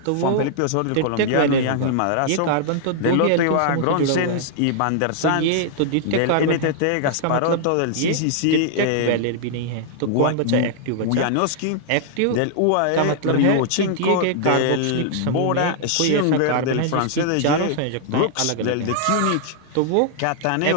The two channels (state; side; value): different; both; correlation -0.01